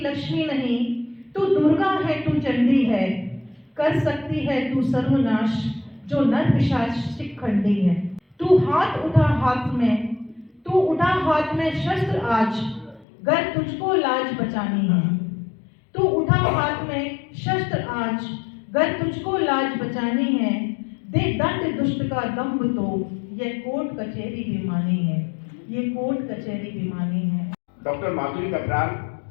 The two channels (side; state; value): right; drops out; at 13.1 s